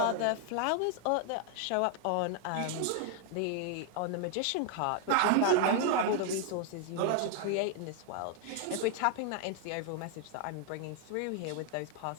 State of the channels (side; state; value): both; different; correlation 0.00